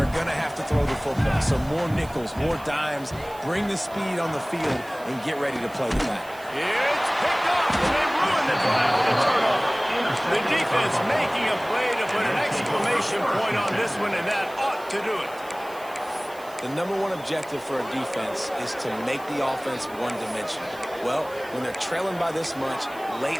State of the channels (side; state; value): right; noise; hiss, 22 dB below the sound